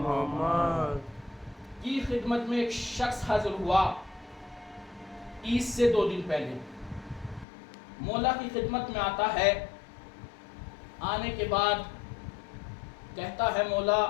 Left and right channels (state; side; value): drops out; right; at 7.5 s